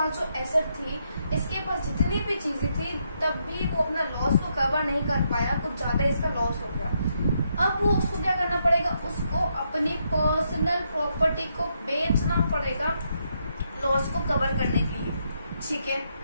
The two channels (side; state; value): both; inverted; correlation -0.78